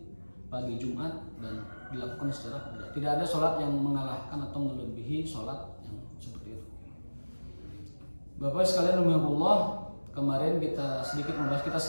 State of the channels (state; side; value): inverted; both; correlation -1.00